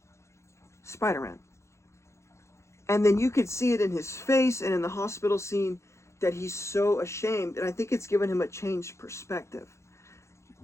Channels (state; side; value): late; right; 0.14 ms